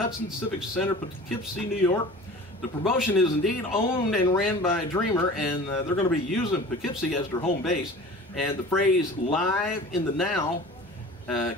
Civic Center, Poughkeepsie, New York. The promotion is indeed owned and ran by Dreamer, and they're going to be using Poughkeepsie as their home base. And the phrase "live in the now"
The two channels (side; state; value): both; normal; correlation 0.40